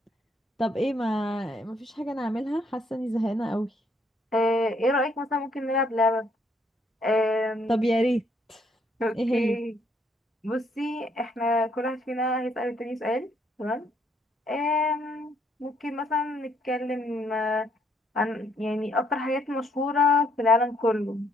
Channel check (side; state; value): both; normal; correlation 0.69